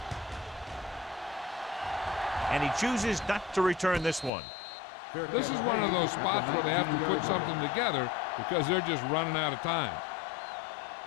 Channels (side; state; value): right; drops out; at 4.3 s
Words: And he chooses not to return this one. This is one of those spots where they have to put something together because they're just running out of time.